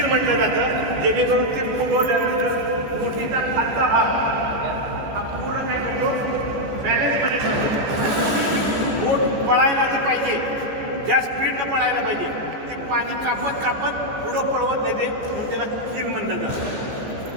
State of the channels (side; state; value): left; late; 14 ms